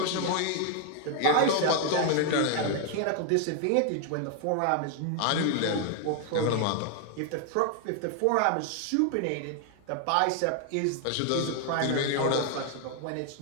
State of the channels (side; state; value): both; different; correlation 0.00